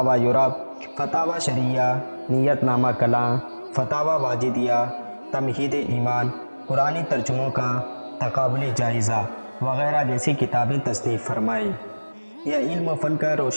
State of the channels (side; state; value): both; inverted; correlation -1.00